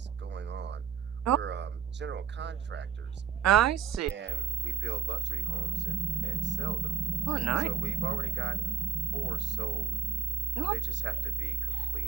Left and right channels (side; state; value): left; quieter; 7.7 dB